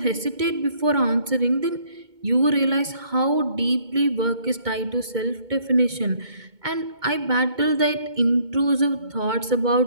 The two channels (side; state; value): left; late; 2.2 ms